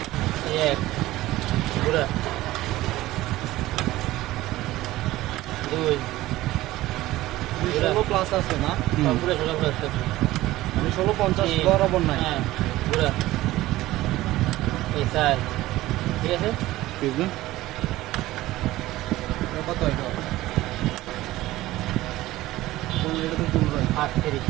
এক পুরা 2 16 প্লাস আছে না পুরো 16 প্লাস আছে আমি 1650 বরাবর নাই হ্যাঁ পুরা এই স্যার ঠিক আছে ঠিক না কত এটা কোন এটা তো তুলবে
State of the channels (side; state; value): left; quieter; 16.8 dB